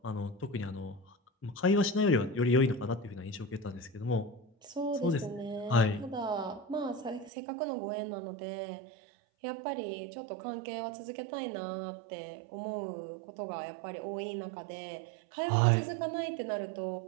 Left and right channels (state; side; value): drops out; left; at 7.3 s